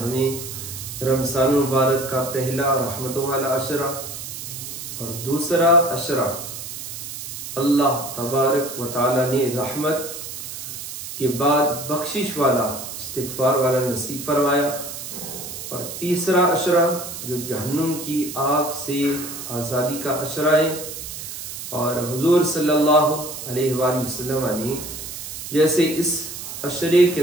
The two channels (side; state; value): right; noise; hiss, 9 dB below the sound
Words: رمضان المبارک کا پہلا رحمتوں والا عشرہ اور دوسرا عشرہ اللہ تبارک و تعالیٰ نے رحمت کے بعد بخشش والا استغفار والا نصیب فرمایا، اور تیسرا عشرہ جو جہنم کی آگ سے آزادی کا عشرہ ہے۔ اور حضور صلی اللہ علیہ وآلہ وسلم نے جیسے اس عشرے کے